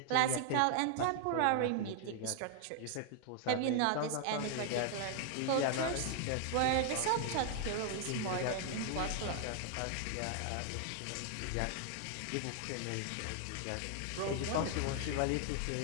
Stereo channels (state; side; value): different; both; correlation 0.00